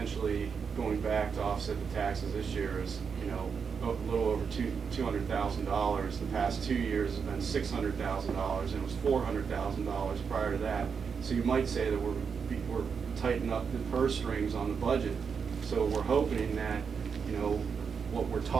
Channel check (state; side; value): quieter; left; 6.1 dB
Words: going back to offset the taxes this year is, a little over $200,000. The past 2 years has been $600,000, and it was $400,000 prior to that. So you might say that we're tightening up the purse strings on the budget. So we're hoping that, what we're